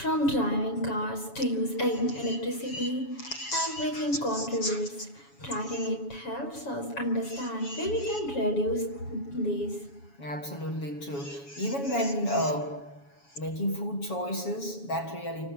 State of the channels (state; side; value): late; right; 7.1 ms